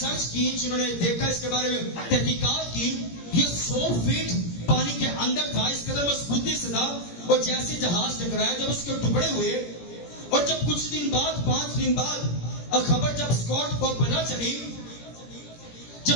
کی, جنہوں نے دیکھا اس کے بارے میں تحقیقات کی, یہ 100 فیٹ پانی کے اندر تھا, اس قدر مضبوطی سے تھا. اور جیسے جہاز ٹکرایا, جب اس کے ٹکڑے ہوئے اور جب کچھ دن بعد 5 دن بعد خبر جب اسکاٹ کو پتہ چلی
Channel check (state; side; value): late; right; 17 ms